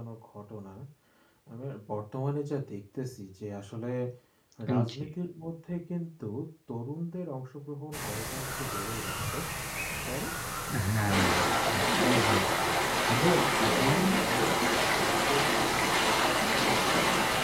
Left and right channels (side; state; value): both; identical; correlation 1.00